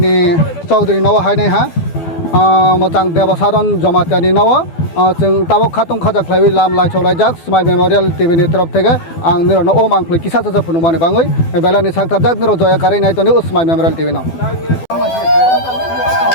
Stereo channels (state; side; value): late; right; 12 ms